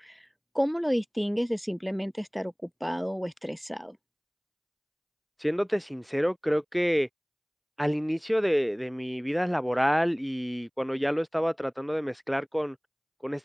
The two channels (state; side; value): identical; both; correlation 1.00